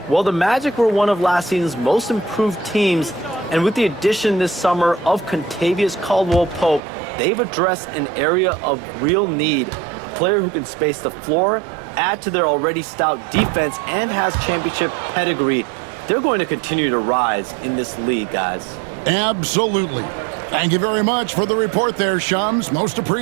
well the Magic were one of last season's most improved teams, and with the addition this summer of Kentavious Caldwell-Pope, they've addressed an area of real need. A player who can space the floor, add to their already stout defense, and has championship pedigree. They're going to continue to rise in this league, guys. Absolutely. Thank you very much for the report there, Shams. Most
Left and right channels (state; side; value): drops out; left; at 6.8 s